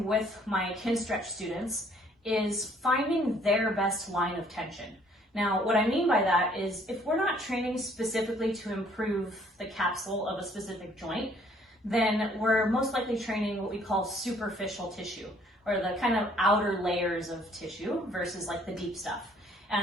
with my Kinstretch students is finding their best line of tension. Now, what I mean by that is if we're not training specifically to improve the capsule of a specific joint, then we're most likely training what we call superficial tissue, or the kind of outer layers of tissue versus like the deep stuff.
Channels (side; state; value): both; normal; correlation 0.61